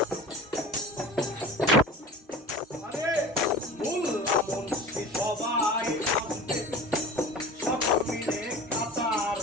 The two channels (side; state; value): both; normal; correlation 0.37